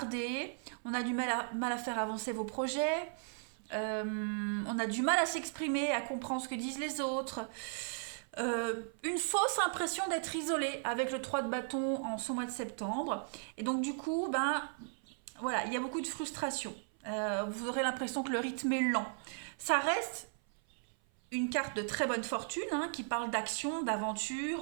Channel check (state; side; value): silent; left; 54 dB below the other